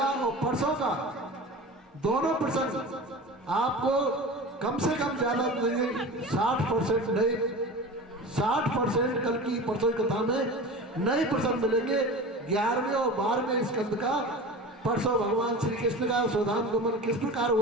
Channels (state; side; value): normal; both; correlation 0.33